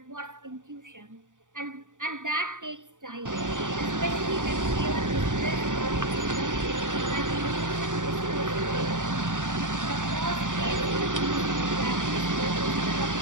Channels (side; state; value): left; late; 0.87 ms